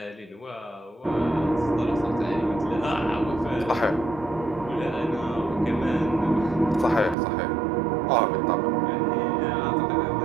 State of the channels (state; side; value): drops out; left; at 7.2 s